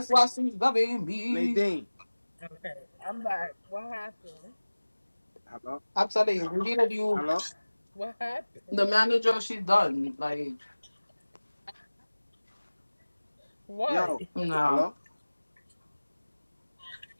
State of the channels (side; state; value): both; inverted; correlation -1.00